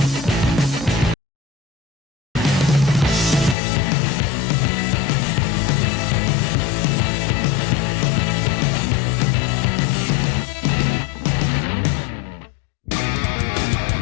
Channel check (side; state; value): right; drops out; at 3.6 s